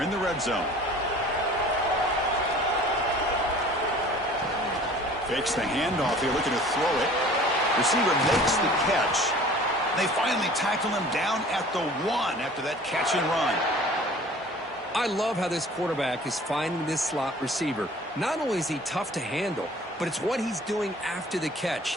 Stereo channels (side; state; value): both; normal; correlation 0.47